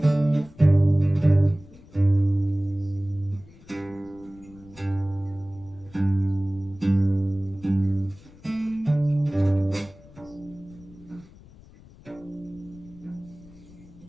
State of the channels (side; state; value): left; noise; rumble, 23 dB below the sound